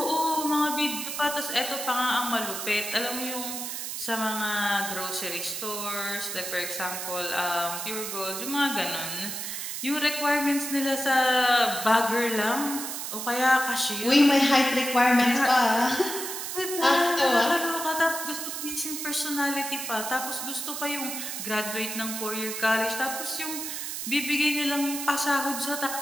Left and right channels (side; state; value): right; noise; hiss, 5 dB below the sound